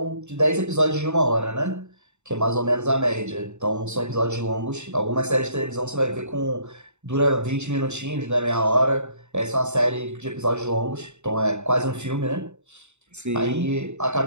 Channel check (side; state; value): left; late; 0.83 ms